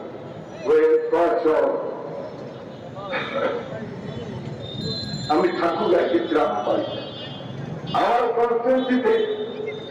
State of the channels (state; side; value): identical; both; correlation 1.00